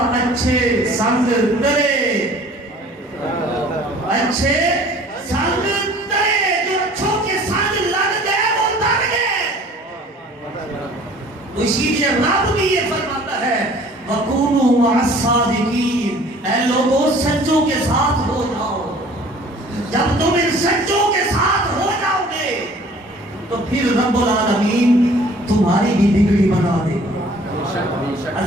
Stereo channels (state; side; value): normal; both; correlation 0.51